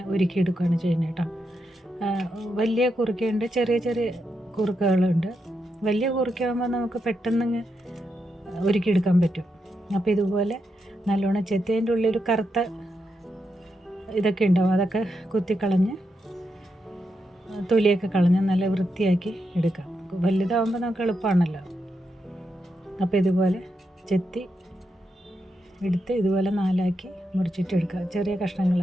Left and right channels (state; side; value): normal; both; correlation 0.84